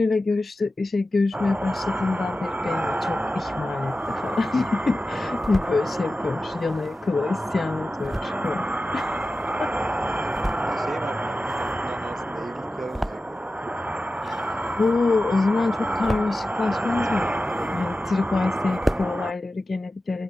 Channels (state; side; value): normal; both; correlation 0.94